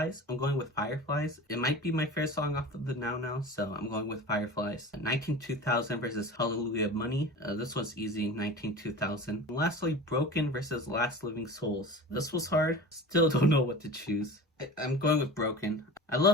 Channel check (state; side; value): normal; both; correlation 0.34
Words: I'm going with Fireflies. It might be my favorite song off of the Now, so I'm going with Fireflies. 19-2000 versus Hallelujah Money. This was easy, 19-2000. Lastly, Broken versus Last Living Souls. This was hard. Still don't know what to choose. I'm going with Broken. I